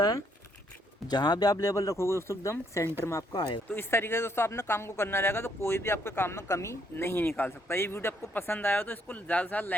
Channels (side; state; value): both; normal; correlation 0.70